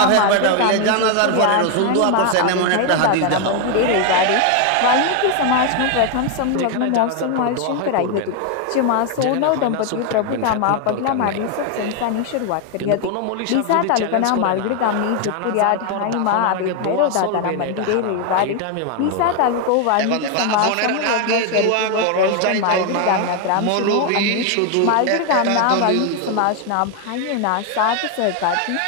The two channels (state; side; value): different; both; correlation 0.01